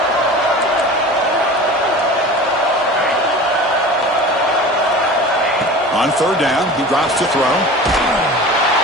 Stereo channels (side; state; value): both; normal; correlation 0.36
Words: On 3rd down, he drops to throw. Oh,